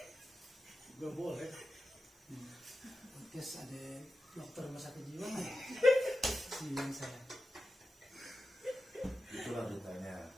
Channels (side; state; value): both; normal; correlation 0.91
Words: Nggak boleh. Terus ada dokter rumah sakit jiwa nggak? Bilang saya. Itulah dukanya.